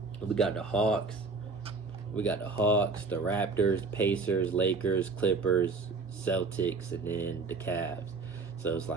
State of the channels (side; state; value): left; quieter; 4.1 dB